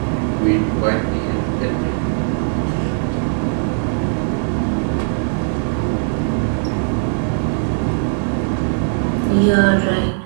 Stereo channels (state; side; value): silent; left; digital silence